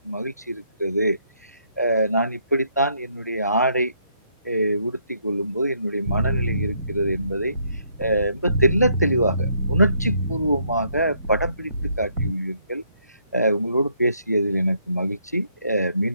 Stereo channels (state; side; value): inverted; both; correlation -0.71